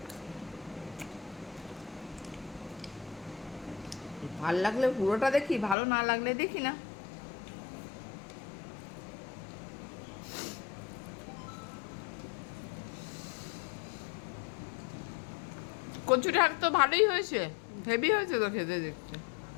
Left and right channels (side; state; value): right; drops out; at 5.8 s